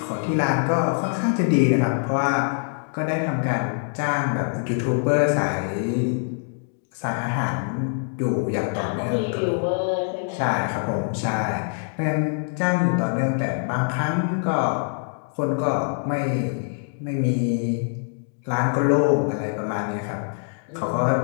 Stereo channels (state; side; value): silent; right; 60 dB below the other